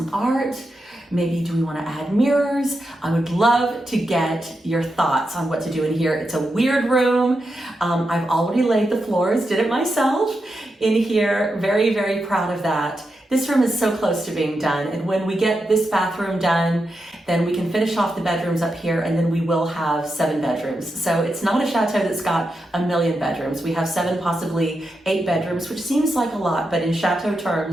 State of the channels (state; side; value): normal; both; correlation 0.87